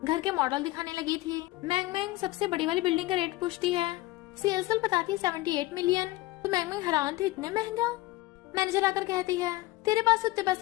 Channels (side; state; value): right; quieter; 18.6 dB